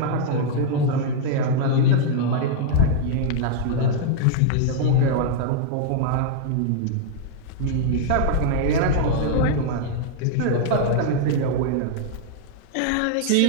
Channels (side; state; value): both; different; correlation -0.01